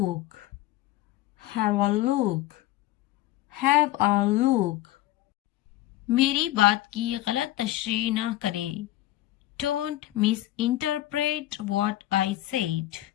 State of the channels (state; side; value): quieter; right; 15.7 dB